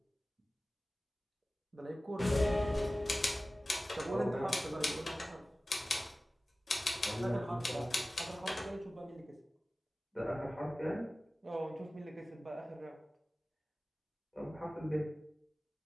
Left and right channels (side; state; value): both; normal; correlation 0.97